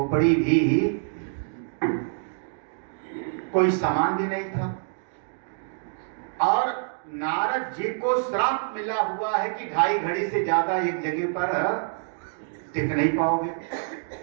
भी, कोई सामान भी नहीं था, और नारद जी को श्राप मिला हुआ है कि 2.5 घड़ी से ज्यादा एक जगह पर टिक नहीं पाओगे।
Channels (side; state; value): left; silent; digital silence